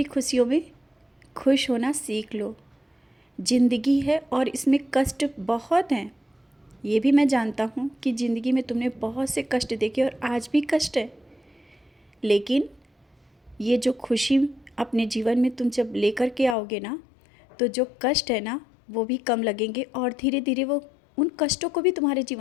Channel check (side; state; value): right; drops out; at 16.6 s